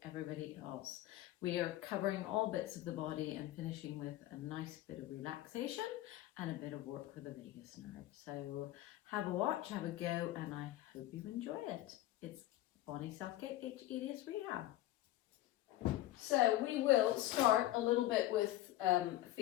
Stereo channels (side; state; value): right; quieter; 15.0 dB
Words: everybody else. We are covering all bits of the body and finishing with a nice bit of relaxation and a bit of work for the vagus nerve. So have a watch, have a go, and I hope you enjoy it. It's Bonnie Southgate, hEDS Rehab. So we will start a little bit with